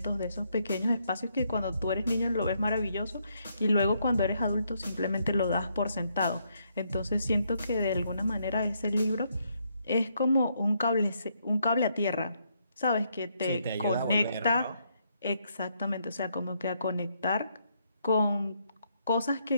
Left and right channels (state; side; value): inverted; both; correlation -0.75